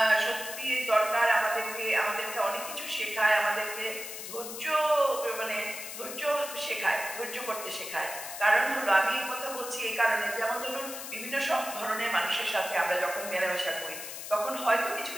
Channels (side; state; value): left; noise; hiss, 9 dB below the sound